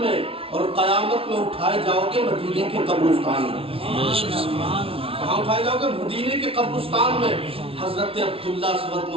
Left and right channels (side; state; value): left; late; 0.26 ms